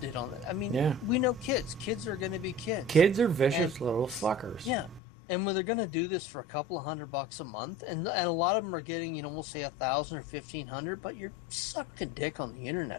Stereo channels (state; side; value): drops out; right; at 5.0 s